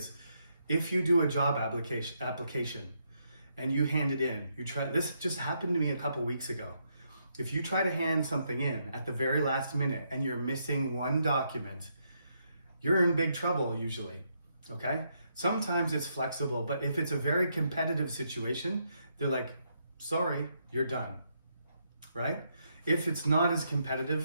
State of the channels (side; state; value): both; inverted; correlation -0.77